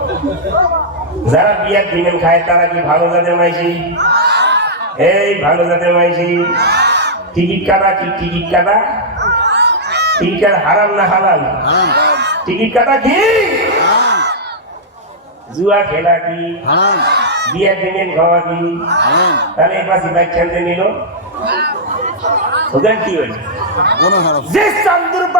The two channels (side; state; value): both; normal; correlation -0.08